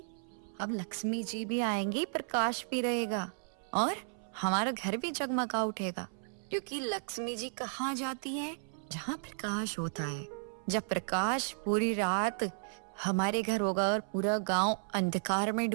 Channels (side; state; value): left; silent; 55 dB below the other